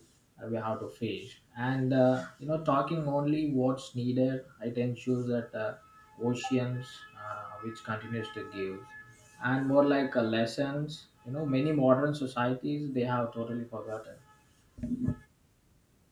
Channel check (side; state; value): both; identical; correlation 1.00